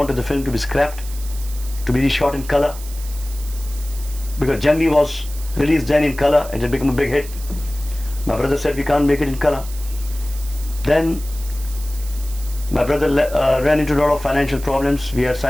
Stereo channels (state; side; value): noise; right; hiss, 15 dB below the sound